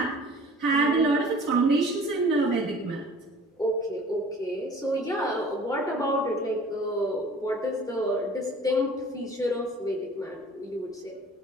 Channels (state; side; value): normal; both; correlation 0.47